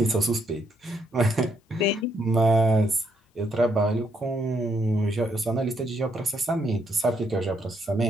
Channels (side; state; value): both; normal; correlation 0.74